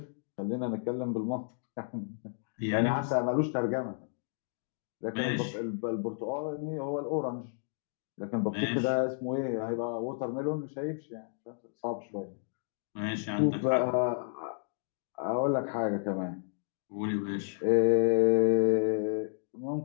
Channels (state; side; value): silent; right; digital silence